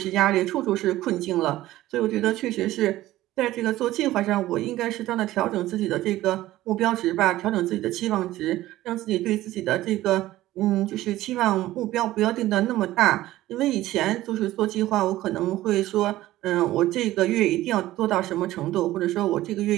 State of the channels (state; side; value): quieter; left; 15.6 dB